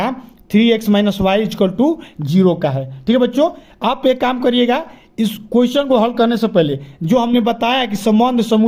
3x - y = 0 का है। ठीक है बच्चों, आप एक काम करिएगा, इस क्वेश्चन को हल करने से पहले जो हमने बताया कि संबंध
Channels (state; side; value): identical; both; correlation 1.00